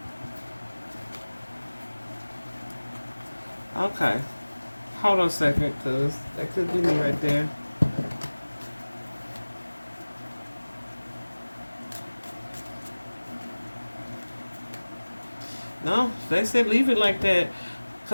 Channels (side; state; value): both; inverted; correlation -1.00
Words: Okay. Hold on a second, because that could be me right there. No, they said leave it like that.